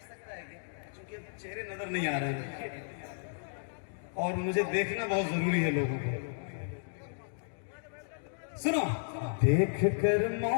سکتا ہے کیا, چونکہ چہرے نظر نہیں آ رہے ہیں اور مجھے دیکھنا بہت ضروری ہے لوگوں کو. سنو, دیکھ کر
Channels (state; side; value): silent; right; digital silence